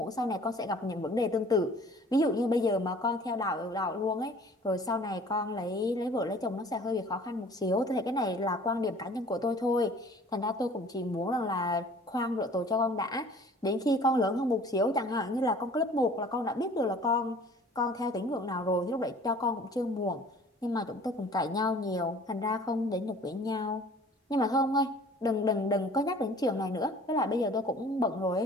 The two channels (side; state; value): both; normal; correlation 0.50